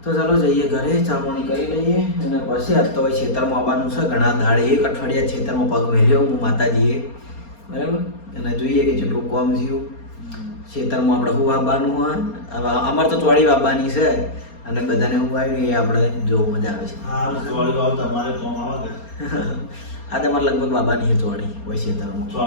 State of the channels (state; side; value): late; right; 4.3 ms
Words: તો ચાલો જઈએ ઘરે, ચા પાણી કરી લઈએ અને પછી આજ તો ભાઈ ખેતરમાં આવવાનું છે. ઘણા દાડે એક અઠવાડિયા ખેતરમાં પગ મેલ્યો હું માતાજીએ બરાબર. અને જોઈએ કે જેટલું કોમ થયું ખેતરમાં આપણે શું વાવવાનું હોય. હવે અમારે તો ચોળી વાવવાની છે અને બધાને હું આવ્યું એ આપણે જોવું મજા આવે છે. આ તમારે લગભગ વાવવાની છે ચોળી હોય ખેતરમાં.